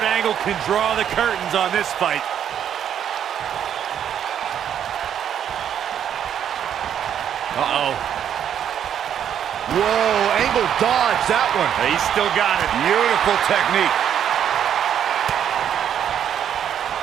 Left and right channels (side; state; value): left; quieter; 9.3 dB